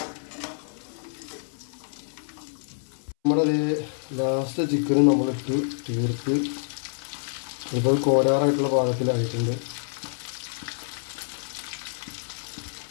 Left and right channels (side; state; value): right; silent; 60 dB below the other